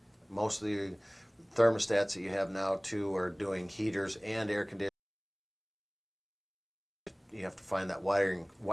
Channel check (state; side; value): identical; both; correlation 1.00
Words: Most of the thermostats that you have now too are doing heaters and air conditioning. You have to find that